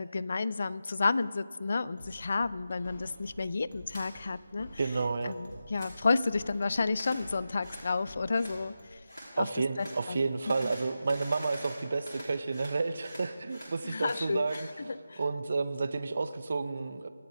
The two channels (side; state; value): both; inverted; correlation -0.90